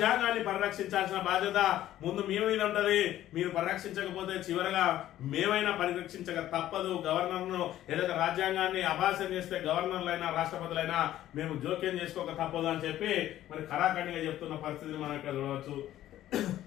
పరిరక్షించాల్సిన బాధ్యత ముందు మీ మీద ఉంటది. మీరు పరిరక్షించకపోతే చివరగా మేమైనా పరిరక్షించక తప్పదు. గవర్నర్ను ఏదైతే రాజ్యాంగాన్ని అభాసం చేస్తే గవర్నర్లైనా రాష్ట్రపతులైనా మేము జోక్యం చేసుకోక తప్పదు అని చెప్పి మరి ఖరాఖండిగా చెప్తున్న పరిస్థితిని మనం ఇక్కడ చూడవచ్చు.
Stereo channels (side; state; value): right; quieter; 13.2 dB